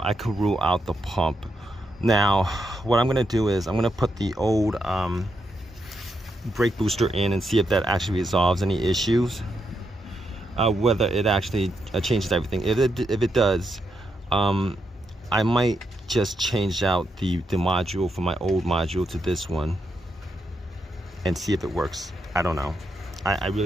could rule out the pump. Now, what I'm gonna do is I'm gonna put the old brake booster in and see if that actually resolves any issues. Whether it actually changes everything. If it does, I might just change out the module from my old module to this one and see if it works. I don't know. I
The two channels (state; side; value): normal; both; correlation 0.82